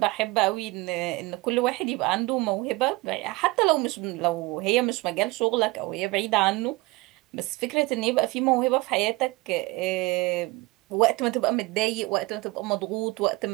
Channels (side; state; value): left; quieter; 22.6 dB